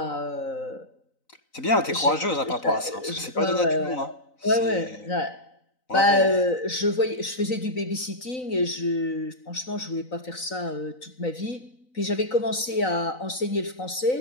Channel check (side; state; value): right; late; 3.9 ms